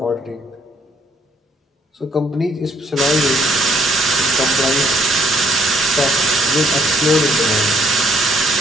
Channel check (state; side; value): normal; both; correlation 0.65